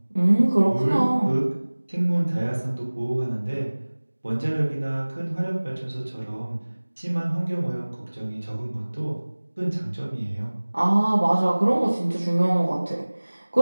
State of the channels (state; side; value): inverted; both; correlation -1.00